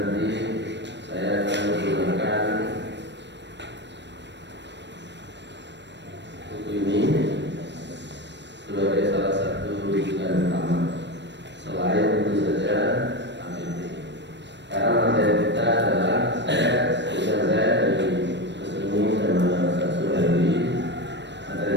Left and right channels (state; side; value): late; left; 0.51 ms